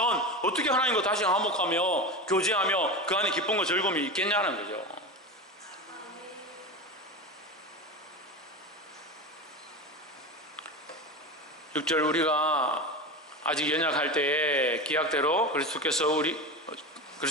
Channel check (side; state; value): both; normal; correlation 0.24